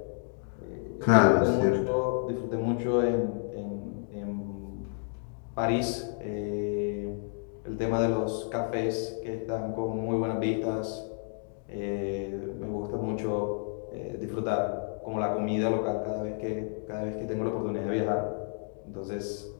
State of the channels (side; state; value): right; silent; 57 dB below the other